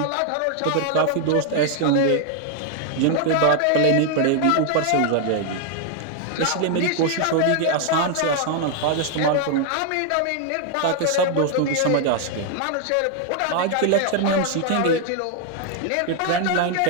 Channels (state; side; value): different; both; correlation 0.00